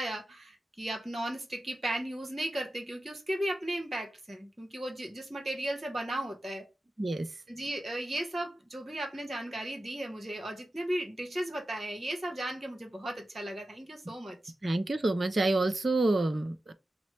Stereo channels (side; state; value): both; normal; correlation 0.93